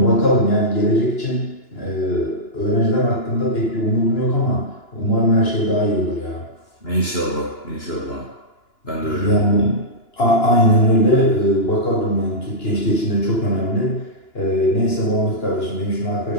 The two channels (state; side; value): late; right; 2.9 ms